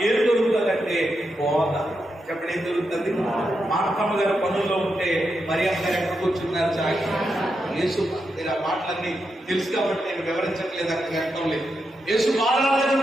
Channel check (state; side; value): normal; both; correlation 0.85